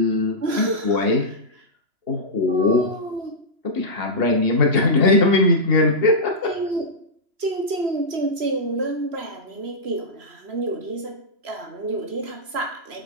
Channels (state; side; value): late; left; 3.0 ms